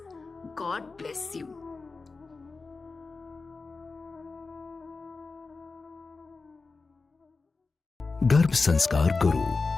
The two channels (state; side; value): quieter; right; 4.0 dB